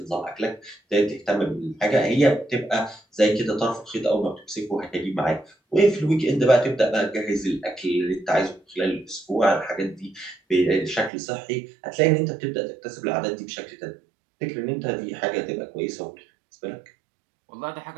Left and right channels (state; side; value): drops out; left; at 11.1 s